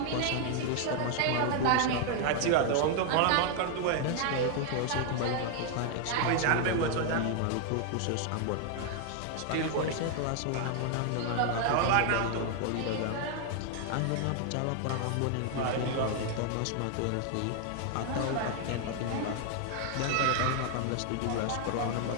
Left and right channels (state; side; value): different; both; correlation 0.00